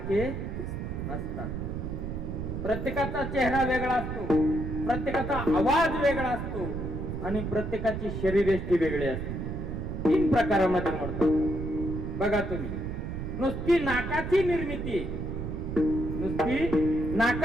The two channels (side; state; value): right; noise; rumble, 4 dB below the sound